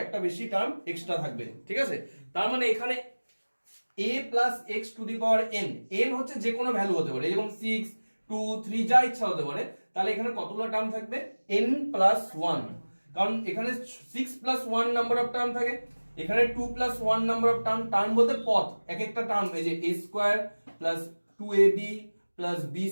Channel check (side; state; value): both; inverted; correlation -1.00